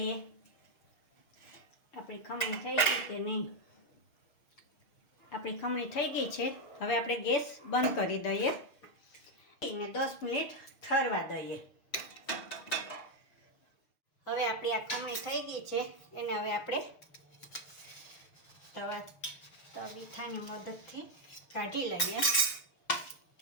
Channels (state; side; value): late; right; 6.5 ms